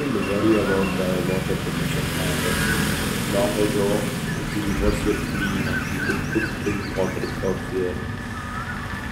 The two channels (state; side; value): identical; both; correlation 1.00